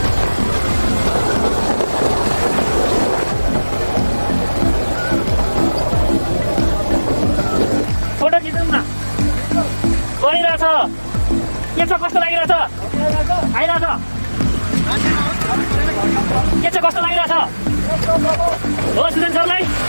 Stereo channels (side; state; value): both; inverted; correlation -1.00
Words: फोटो खिचौँ न गइरहेछ के छ कस्तो लागिरहेछ आइरहेछ के छ कस्तो लागिरहेछ हो सुजन सरलाई